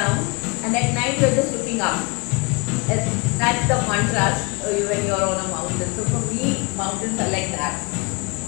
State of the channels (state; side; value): quieter; right; 30.1 dB